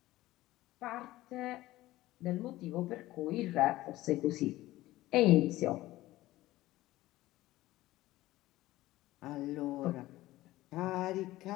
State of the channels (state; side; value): quieter; right; 16.8 dB